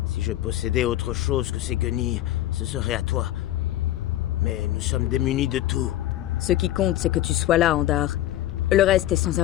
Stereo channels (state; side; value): quieter; right; 14.2 dB